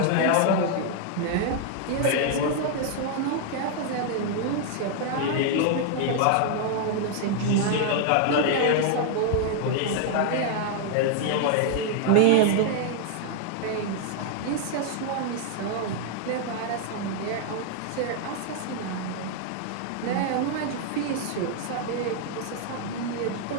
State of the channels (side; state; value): both; different; correlation 0.00